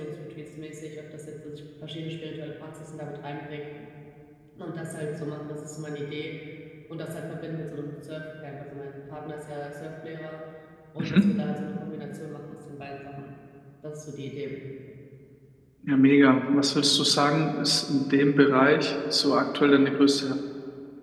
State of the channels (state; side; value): identical; both; correlation 1.00